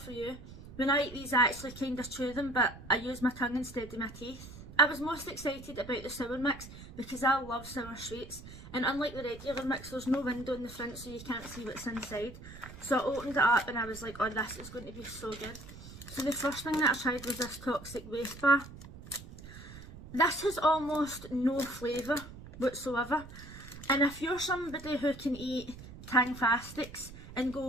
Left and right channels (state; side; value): noise; right; rumble, 15 dB below the sound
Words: for you. When I eat these, I actually kind of chew them, but I use my tongue instead of my teeth. I was most excited about the sour mix because I love sour sweets, and unlike the regular mix, there's no window in the front so you can't see what's inside. So I opened it up and I was like, oh, this is going to be so good. So the first thing that I tried was this toxic waste bar. This has almost no flavour whatsoever, and if you're somebody who can eat Tang-fastics and